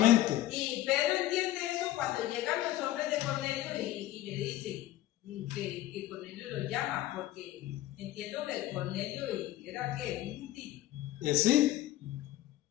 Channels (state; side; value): quieter; right; 14.7 dB